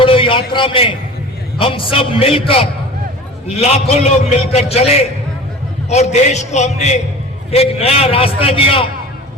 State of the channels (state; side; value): normal; both; correlation 0.38